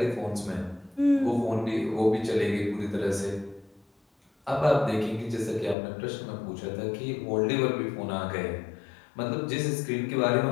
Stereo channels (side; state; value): right; drops out; at 5.8 s